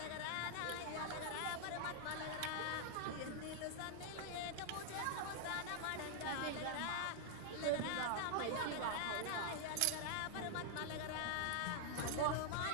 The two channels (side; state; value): both; different; correlation -0.01